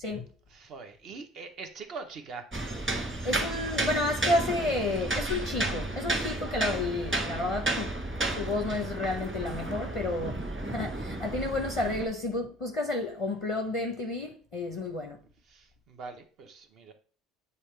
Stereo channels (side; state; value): both; normal; correlation 0.50